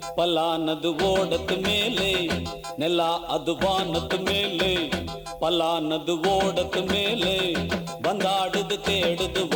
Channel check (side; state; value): both; identical; correlation 1.00